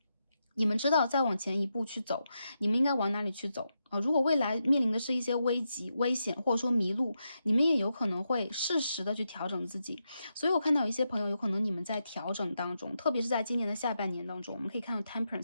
你们知道再往前一步去走，你们应该往哪里去走如果未来面临的是一些危急、危险，或者说迷路，你们也有可能会适时的去调整自己。所以我看到有一些朋友，有可能你们在调整当中，特别是在今年的下半年当中，我们可以看到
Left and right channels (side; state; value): both; inverted; correlation -0.85